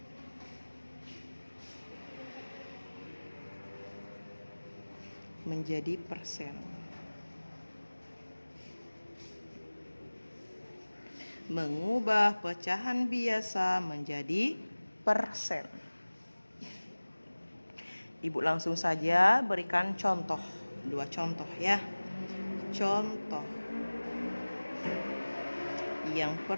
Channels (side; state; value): both; inverted; correlation -1.00